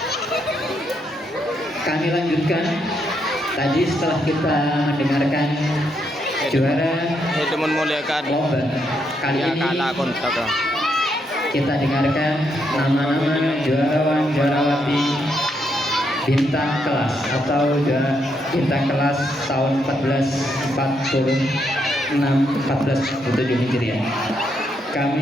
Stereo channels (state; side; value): normal; both; correlation 0.78